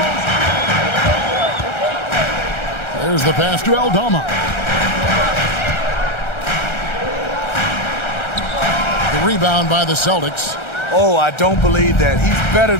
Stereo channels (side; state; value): right; late; 1.3 ms